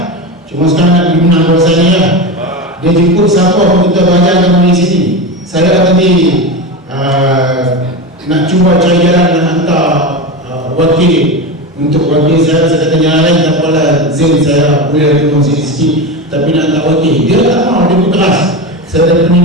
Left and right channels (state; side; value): normal; both; correlation 0.21